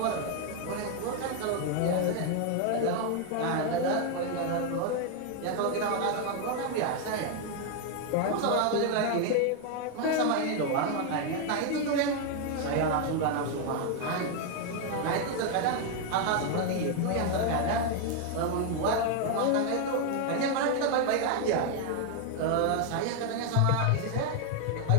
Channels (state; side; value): different; both; correlation 0.00